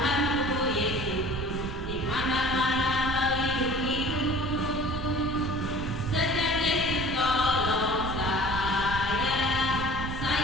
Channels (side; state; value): right; noise; rumble, 7 dB below the sound